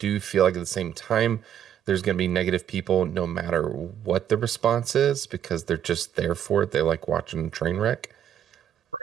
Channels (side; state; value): left; quieter; 9.9 dB